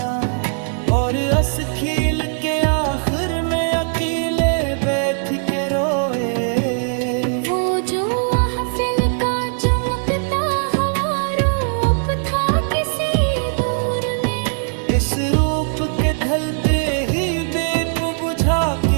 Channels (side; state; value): left; silent; digital silence